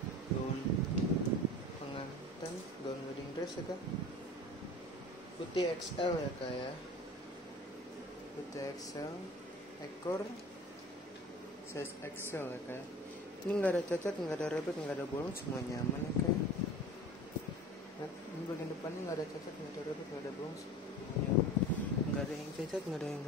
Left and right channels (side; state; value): both; normal; correlation 0.39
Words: gaun pengantin, gaun wedding dress ya Kak. Putih XL ya Kak ya. Putih XL, ekor size XL ya Kak ya. Ini nggak ada cacat, nggak ada rebek, nggak ada bolong, semua nyaman ya Kak. Nah, ini bagian depannya nggak ada cacat, nggak ada rebek, nggak ada bolong, semuanya nggak ada yang cacat, nggak ada yang